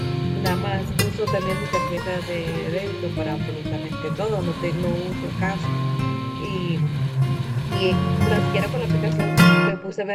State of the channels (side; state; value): both; identical; correlation 1.00